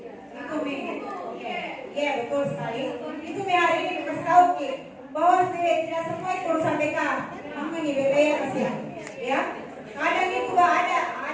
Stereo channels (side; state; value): both; identical; correlation 1.00